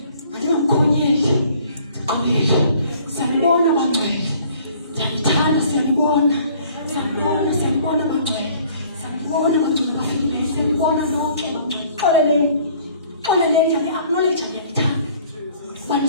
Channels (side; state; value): both; inverted; correlation -0.55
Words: Andingamkhonyeli, ndiqolile. Siyanibona bangcwele, ndiyanithanda, siyanibona bangcwele, siyanibona bangcwele bafikileyo, siyanibona lonke bangcwele. Xoleleni, acknowledge ndiyanithanda, uba